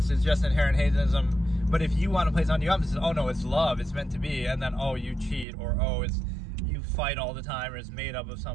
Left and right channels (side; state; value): left; drops out; at 5.5 s